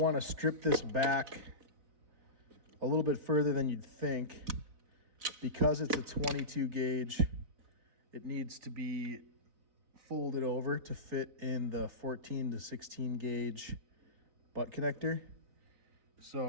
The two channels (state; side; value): late; left; 4.0 ms